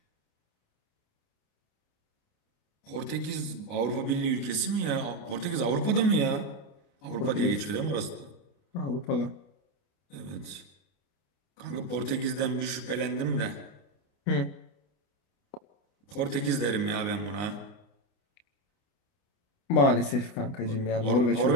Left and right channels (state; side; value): late; right; 29 ms